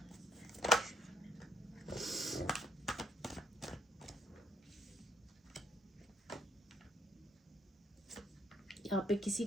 यहाँ पे किसी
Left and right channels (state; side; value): normal; both; correlation 0.69